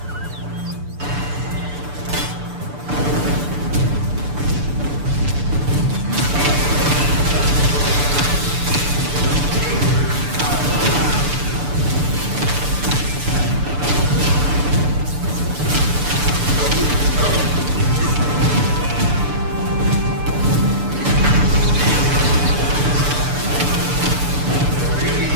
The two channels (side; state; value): left; late; 6.9 ms